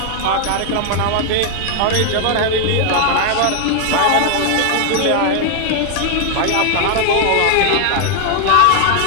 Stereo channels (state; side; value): different; both; correlation 0.00